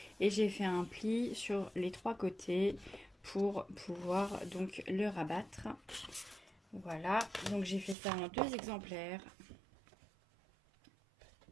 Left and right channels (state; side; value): drops out; left; at 8.0 s